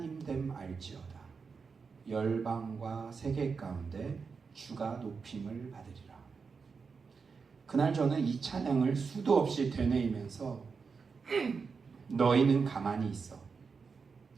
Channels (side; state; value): left; quieter; 5.2 dB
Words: 됨 알지어다. 열방과 세계 가운데 주가 높임을 받으리라. 그날 저는 이 찬양을 수도 없이 되뇌이면서 너희는 가만히 있어.